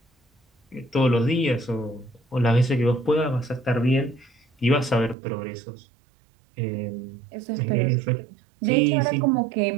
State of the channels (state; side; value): drops out; left; at 5.2 s